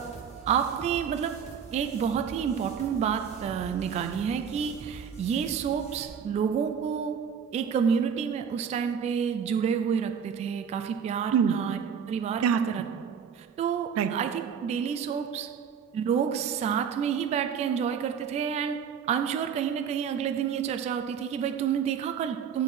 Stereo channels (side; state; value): left; quieter; 7.3 dB